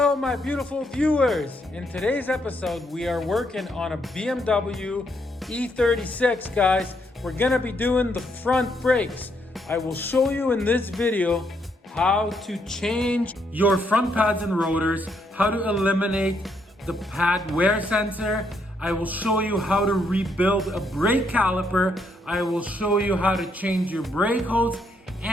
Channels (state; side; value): normal; both; correlation 0.75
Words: my beautiful viewers. In today's episode, we are working on a BMW E36, guys. We're gonna be doing the front brakes. I will show you in this video how to change your front pads and rotors, how to eliminate the pad wear sensor. I will show you how to rebuild a brake caliper. I will show you how to change your brake hose